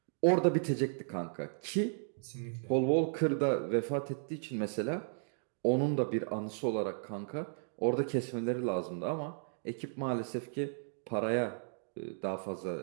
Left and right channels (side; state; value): left; silent; digital silence